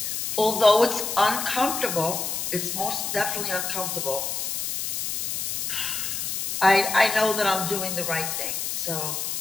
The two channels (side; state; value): left; noise; hiss, 2 dB below the sound